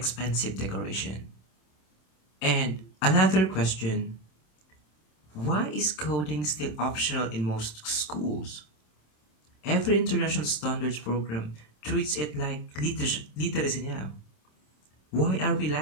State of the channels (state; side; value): late; right; 27 ms